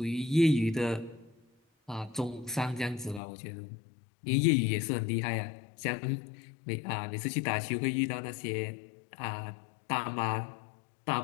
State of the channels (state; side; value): drops out; right; at 3.2 s